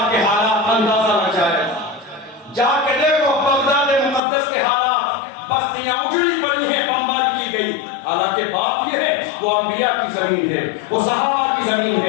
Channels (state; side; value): drops out; right; at 4.2 s